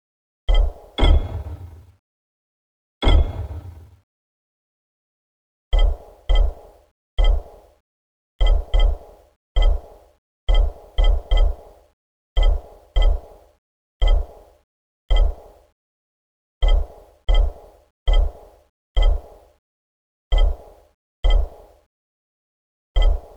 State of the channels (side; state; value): both; identical; correlation 1.00